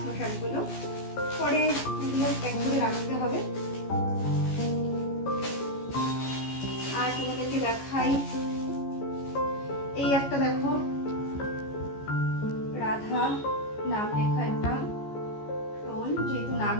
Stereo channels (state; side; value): late; right; 14 ms